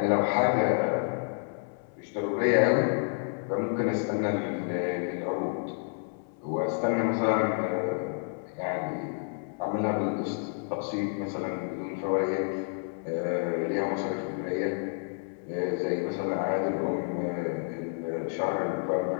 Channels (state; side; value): silent; right; 58 dB below the other